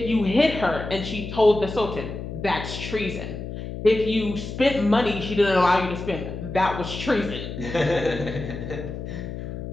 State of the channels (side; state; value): left; noise; hum, 8 dB below the sound